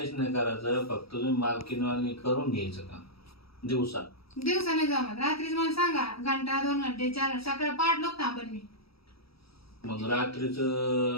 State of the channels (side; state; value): right; late; 0.76 ms